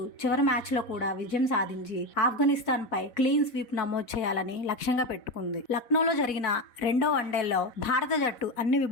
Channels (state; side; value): late; right; 4.1 ms